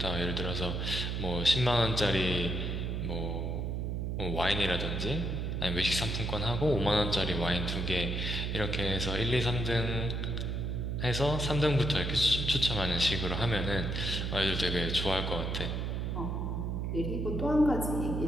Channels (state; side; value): noise; right; hum, 1 dB below the sound